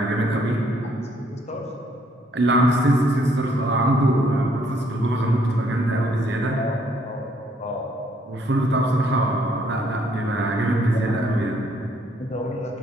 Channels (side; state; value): both; normal; correlation 0.67